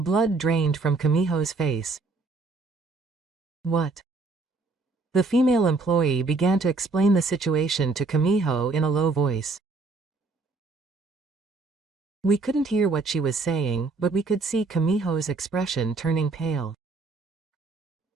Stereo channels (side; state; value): left; quieter; 3.7 dB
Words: drained from Kamiho's face. What? The female employee began to explain the situation to Kamiho in a low voice. We couldn't hear what she was saying, but we could see Kamiho's expression turning pale.